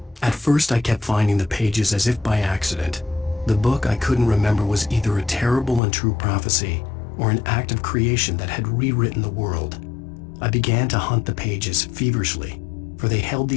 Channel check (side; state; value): right; drops out; at 5.8 s